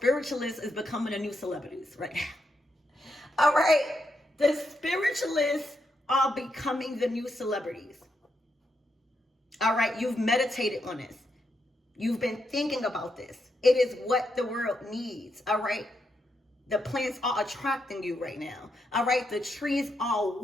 is becoming the new celebrities right now. All right, the spiritualists are becoming the new celebrities. All right, you've meditated on this. You've been thinking about this. It is what the world needs. All right, the plants are attracting you right now. All right, the trees are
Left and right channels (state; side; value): normal; both; correlation 0.81